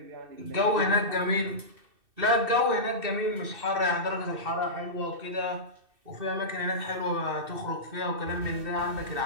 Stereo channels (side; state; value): left; late; 2.6 ms